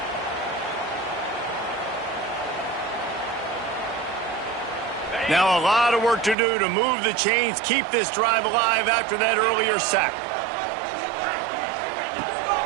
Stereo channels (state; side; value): drops out; left; at 6.4 s